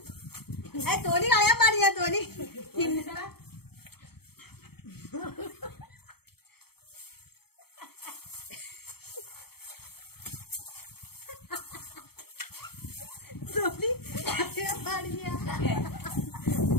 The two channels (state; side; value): late; right; 0.96 ms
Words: തോലി കളയാൻ പാടില്ല. തോലി